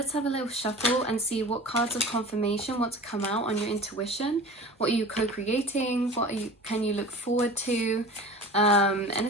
have a little shuffle and see what cards of confirmation want to come out on your intuition. What are you co-creating? Can you look forward to?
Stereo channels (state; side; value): normal; both; correlation 0.38